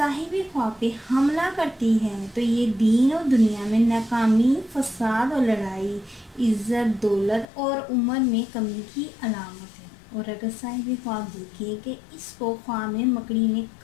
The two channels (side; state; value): right; drops out; at 7.5 s